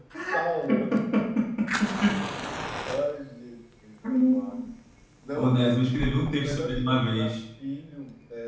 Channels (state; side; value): identical; both; correlation 1.00